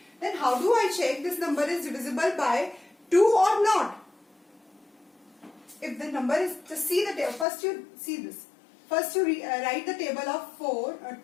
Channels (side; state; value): right; drops out; at 7.5 s